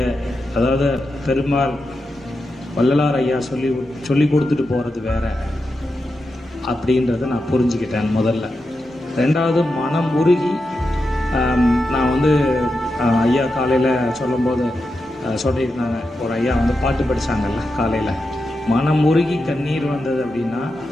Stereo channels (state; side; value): normal; both; correlation 0.88